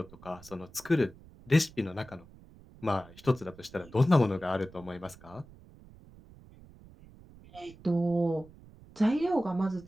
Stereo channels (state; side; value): noise; right; rumble, 22 dB below the sound